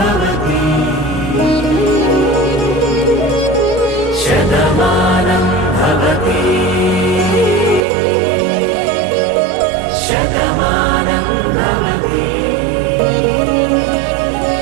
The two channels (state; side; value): drops out; left; at 7.8 s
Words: శతమానం భవతి శతమానం భవతి